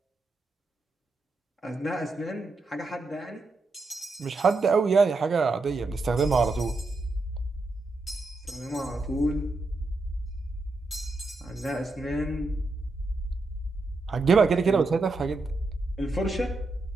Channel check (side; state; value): left; quieter; 3.2 dB